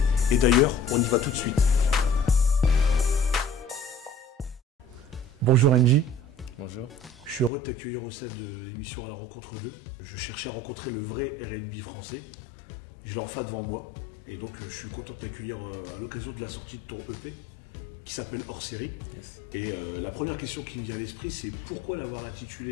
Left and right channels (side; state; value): right; drops out; at 7.5 s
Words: Et d'ailleurs, on y va tout de suite. Bonjour NJ. Bonjour. Je suis heureux de t'accueillir au sein de l'émission À la rencontre d'eux. Je cherchais à rencontrer le vrai R&B français. Je l'ai enfin devant moi. Et donc, je suis content de t'accueillir à l'occasion de la sortie de ton EP. Qui s'appelle Hors Série. Et la première question qui me vient à l'esprit, c'est pourquoi l'avoir